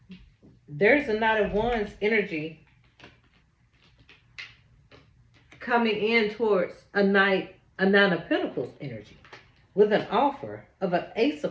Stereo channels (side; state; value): both; identical; correlation 1.00